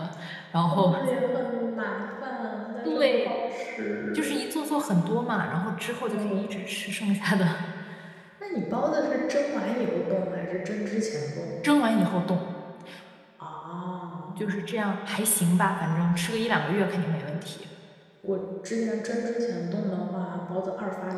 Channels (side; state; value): both; identical; correlation 1.00